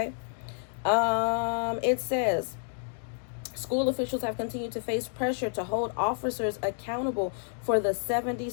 It says, school officials have continued to face pressure to hold officers accountable for the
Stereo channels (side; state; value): right; silent; digital silence